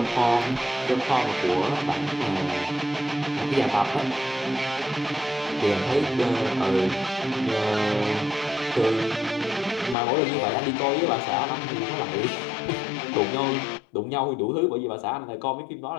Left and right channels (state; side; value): drops out; right; at 10.0 s